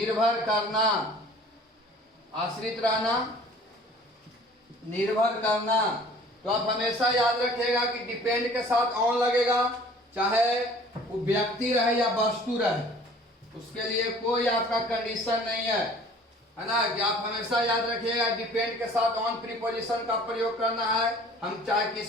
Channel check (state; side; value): normal; both; correlation 0.50